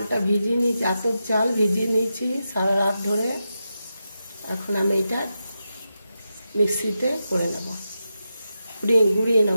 ভিজিয়ে নিয়েছি, আতপ চাল ভিজিয়ে নিয়েছি সারা রাত ধরে। এখন আমি এটা মিক্সিতে করে নেব, গুঁড়িয়ে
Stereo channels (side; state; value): both; inverted; correlation -0.89